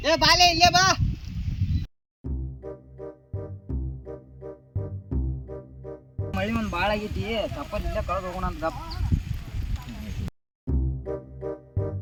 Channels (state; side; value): identical; both; correlation 1.00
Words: ಏ ಬಾಲೆ ಇಲ್ಲೇ ಬಾ. ಮಳಿ ಒಂದ್ ಬಾಳ ಆಗೈತಿ, ತಪ್ಪಲ್ ಇಲ್ಲೇ ಕಳೆದು ಹೋಗೋಣ ಅಂತ ಗಪ್.